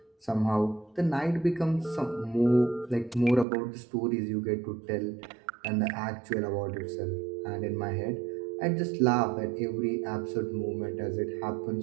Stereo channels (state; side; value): drops out; left; at 3.5 s